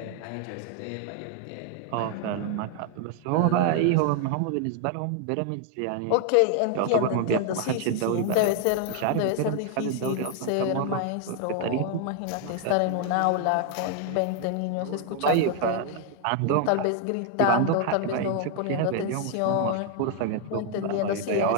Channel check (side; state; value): both; different; correlation 0.00